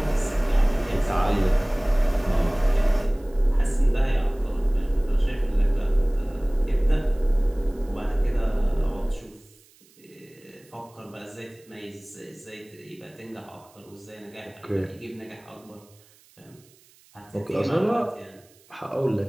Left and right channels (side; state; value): right; noise; hiss, 29 dB below the sound